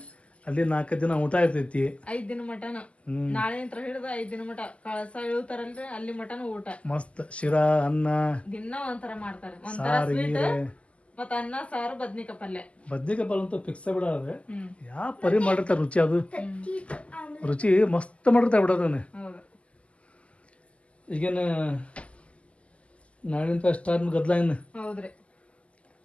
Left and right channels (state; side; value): late; right; 0.060 ms